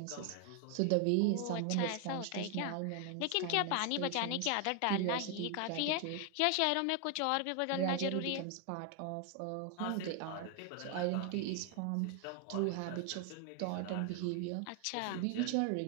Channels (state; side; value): different; both; correlation 0.00